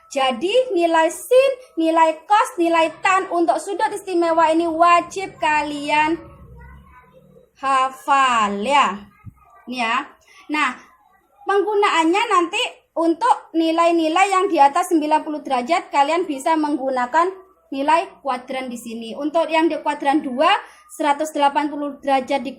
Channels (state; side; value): identical; both; correlation 1.00